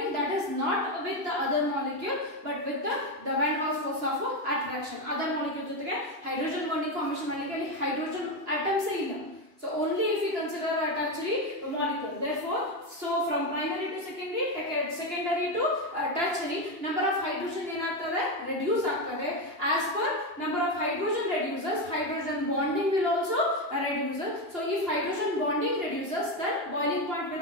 That is not with the other molecule but with the van der Waals force of attraction. Other molecule jotege hydrogen bonding formation malike hydrogen atoms illa. So only if we consider a tertiary molecule. Therefore, so from primary to secondary to tertiary, number of hydrogen ಏನಾಗ್ತದೆ reduce ಆಗ್ತದೆ. As per number of hydrogen reduces, hydrogen bonding will also reduce. So if hydrogen bonding reduces, then boiling point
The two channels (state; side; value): late; left; 2.9 ms